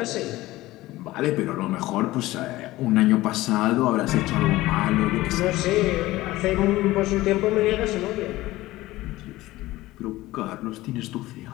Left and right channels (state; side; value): quieter; right; 17.7 dB